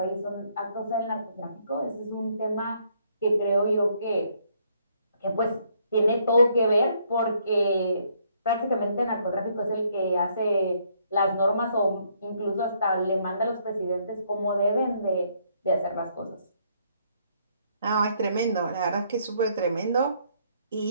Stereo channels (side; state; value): both; inverted; correlation -0.69